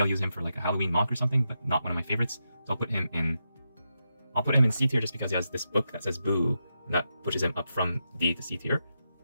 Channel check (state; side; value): inverted; both; correlation -0.86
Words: I'll use him for like a Halloween mock or something, but not one of my favorites, so I'll put him in C tier just because he has this book that says Boo, and that pushes him up from D to C tier.